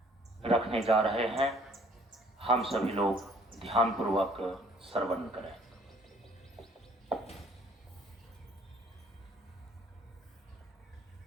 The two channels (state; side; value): normal; both; correlation 0.58